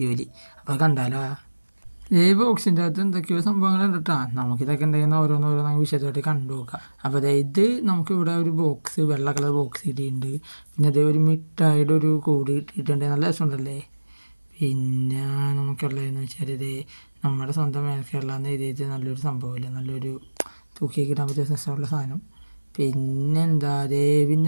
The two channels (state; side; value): inverted; both; correlation -1.00